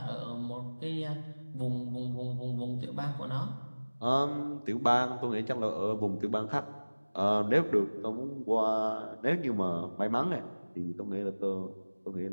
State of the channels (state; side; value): inverted; both; correlation -1.00